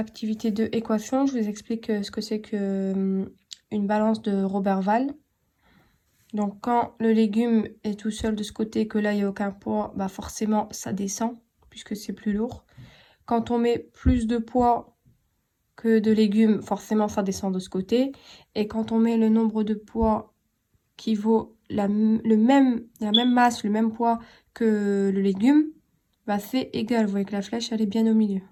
2, équation. Je vous explique ce que c'est que une balance de Roberval. Donc, quand le légume est tout seul de ce côté et que là, il n'y a aucun poids, bah forcément, ça descend puisque c'est plus lourd. Quand on met plus de poids que de légumes, forcément, ça descend de ce côté. Et quand on met le nombre de poids qui vaut la même masse, le même poids que le légume, bah c'est égal. Vous voyez que la flèche, elle est bien au milieu.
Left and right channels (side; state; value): both; identical; correlation 1.00